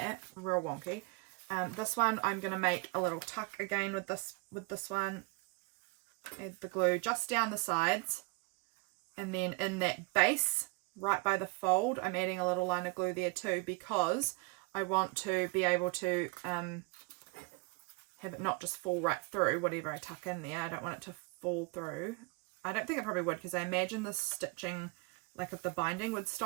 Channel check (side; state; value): left; quieter; 28.0 dB